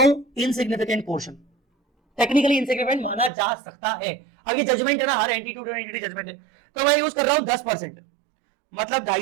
हूं इनसिग्निफिकेंट पोर्शन, टेक्निकली इनसिग्निफिकेंट माना जा सकता है, ये जजमेंट है ना, हर एंटिटी टू एंटिटी जजमेंट है। तो मैं यूज कर रहा हूं 10%, मतलब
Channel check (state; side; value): drops out; left; at 3.3 s